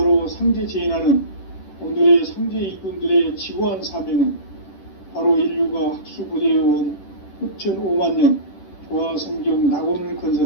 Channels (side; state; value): right; late; 10 ms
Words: 상제 제인하는 오늘의 상제 일꾼들의 지고한 사명은 바로 인류가 학수고대해온 후천 5만 년 조화성경 낙원을